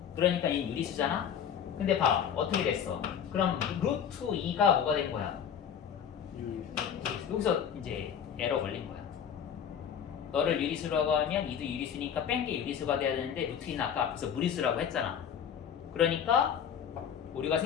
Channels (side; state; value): right; quieter; 8.3 dB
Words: 그러니까 이 유리수잖아. 근데 봐, 어떻게 됐어? 그럼 루트 2가 뭐가 된 거야? 여기서 이제 에러 걸린 거야. 너를 유리수라고 하면 이도 유리수니까 뺀 게 유리수가 돼야 되는데 루트 2는 아까 앞에서 무리수라고 했잖아. 그러니까 오류가